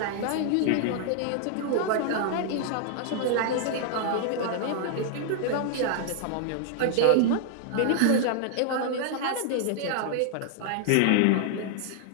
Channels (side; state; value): both; different; correlation -0.01